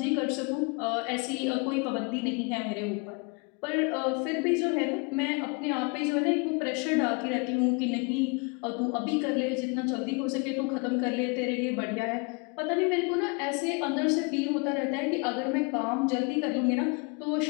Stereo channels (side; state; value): right; quieter; 31.8 dB